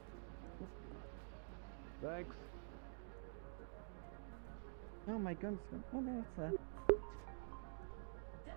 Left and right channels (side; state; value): left; silent; digital silence